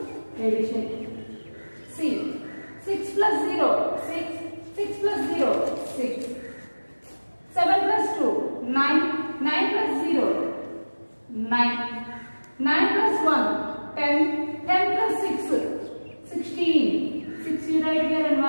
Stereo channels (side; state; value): both; inverted; correlation -1.00